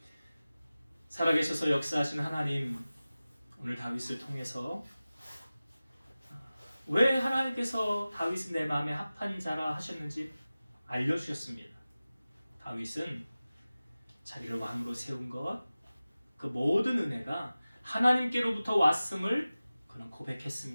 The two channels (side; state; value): both; inverted; correlation -0.97